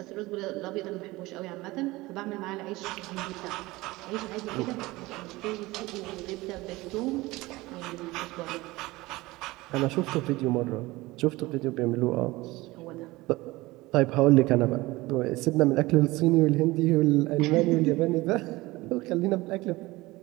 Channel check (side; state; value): left; quieter; 20.4 dB